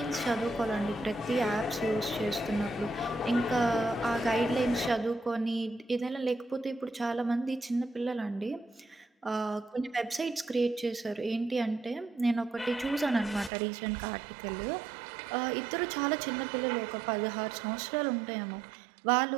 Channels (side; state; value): left; drops out; at 13.5 s